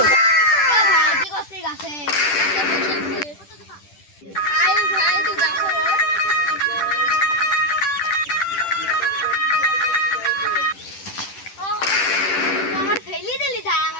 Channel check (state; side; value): late; right; 10 ms